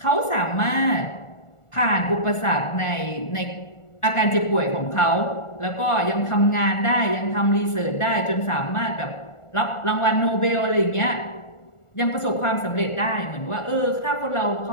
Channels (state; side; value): late; right; 1.4 ms